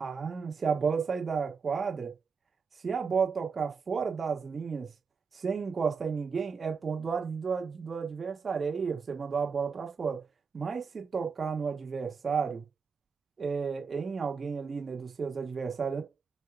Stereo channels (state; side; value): quieter; left; 5.4 dB